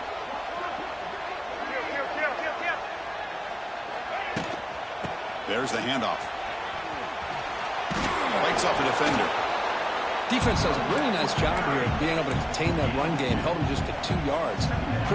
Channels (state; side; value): identical; both; correlation 1.00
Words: There's the handoff. Lights off the defender. Defense does a really nice job here of being able to contain that run game. Held him just at 2 yards.